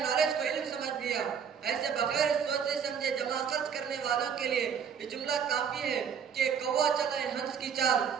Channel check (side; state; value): left; quieter; 7.4 dB